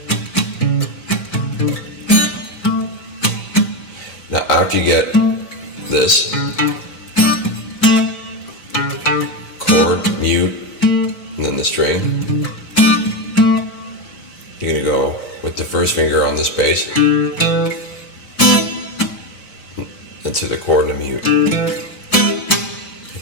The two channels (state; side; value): late; right; 4.6 ms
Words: Now after you get this chord, mute, and then the string, you're going to go with the first finger on this bass into the chord and a mute,